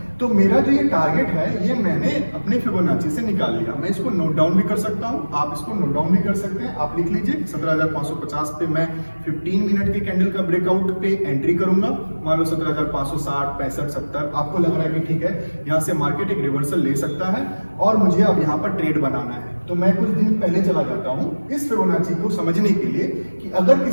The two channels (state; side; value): inverted; both; correlation -1.00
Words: तो मेरा जो ये टारगेट है, ये मैंने अपने फिबोनाची से निकाल लिया। मैं इसको नोट डाउन भी कर सकता हूँ, आप इसको नोट डाउन भी कर सकते हैं। आप लिख लीजिए 17,550 पे मैं 15 मिनट के कैंडल का ब्रेकआउट पे एंट्री करूंगा। मान लो 17,560, 65, 70 आपको लग रहा है कि ठीक है, यहाँ से मार्केट एक रिवर्सल ले सकता है और मुझे अब यहाँ पर ट्रेड बनाना है। तो मैं कुछ दिन पहले चला जाता हूँ इस फिबोनाची को समझने के लिए कि अगर